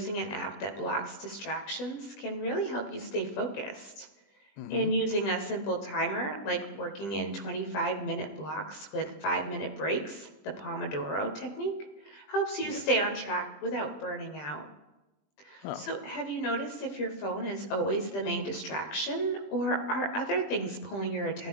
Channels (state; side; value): late; right; 20 ms